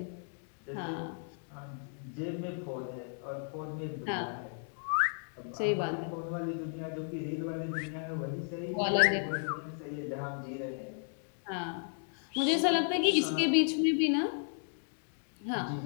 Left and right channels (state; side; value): silent; right; 55 dB below the other